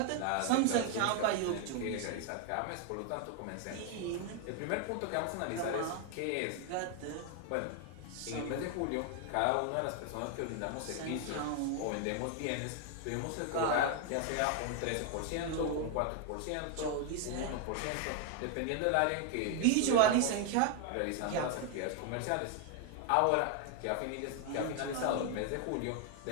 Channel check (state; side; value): different; both; correlation 0.00